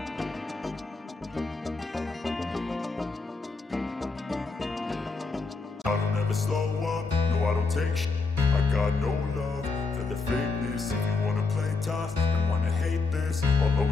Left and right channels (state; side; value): quieter; right; 4.1 dB